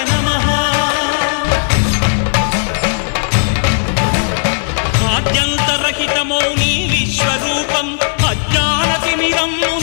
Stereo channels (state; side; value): silent; right; digital silence